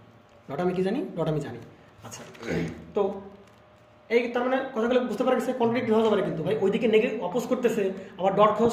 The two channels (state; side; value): identical; both; correlation 1.00